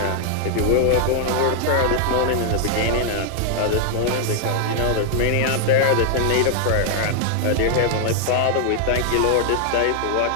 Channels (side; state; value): both; different; correlation 0.00